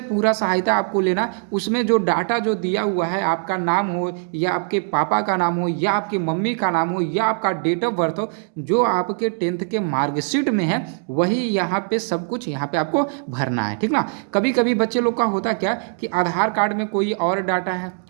सहायता आपको लेना। उसमें जो डाटा जो दिया हुआ है, आपका नाम हो या आपके पापा का नाम हो या आपकी मम्मी का नाम हो या आपका डेट ऑफ बर्थ हो, जो आपके 10th के मार्कशीट में है वही यहाँ पे सब कुछ यहाँ पे आपको भरना है, ठीक ना। कभी कभी बच्चे लोग का होता क्या कि आधार कार्ड में कोई और डाटा है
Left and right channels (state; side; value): silent; left; 65 dB below the other